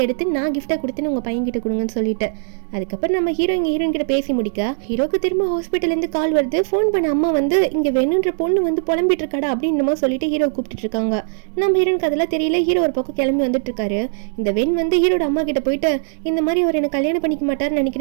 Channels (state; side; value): silent; left; digital silence